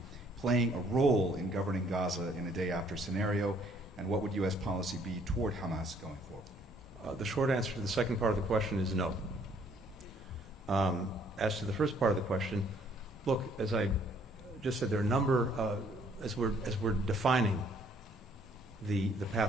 playing a role in governing Gaza in a day-after scenario, and what would U.S. policy be toward Hamas going forward? The short answer to the second part of the question is no. As to the first part of the question, look, as I just said, there are a number, as we're defining the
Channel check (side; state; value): both; normal; correlation 0.63